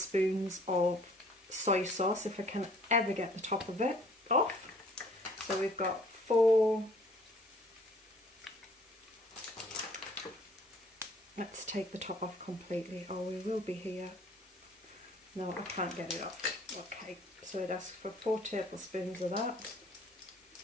of soy sauce, if I can ever get the top of it off. So we've got 4, let's take the top off completely, or we will be here. No, I can't get it off. Okay, so it asks for 4 tablespoons of that.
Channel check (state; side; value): normal; both; correlation 0.56